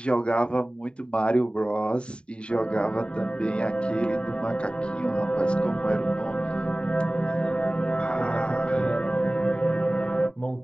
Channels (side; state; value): right; late; 0.054 ms